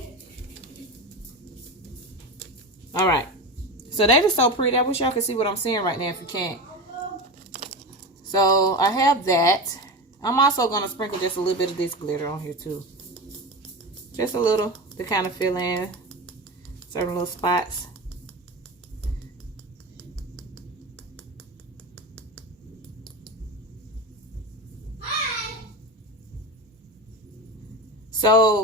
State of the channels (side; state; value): both; normal; correlation 0.24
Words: All right, so that is so pretty. I wish y'all could see what I'm seeing right now if you can't. So I have that. I'm also going to sprinkle just a little bit of this glitter on here too. Just a little to kind of fill in certain little spots.